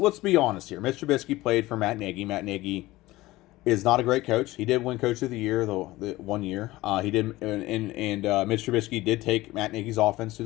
be honest here. Mitch Trubisky played for Matt Nagy. Matt Nagy is not a great coach. He did win Coach of the Year the 1 year. He did, and Mitch Trubisky did take Matt Nagy's offense to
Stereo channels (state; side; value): quieter; right; 18.4 dB